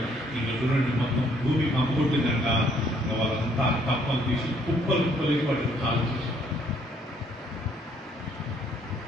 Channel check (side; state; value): both; normal; correlation 0.65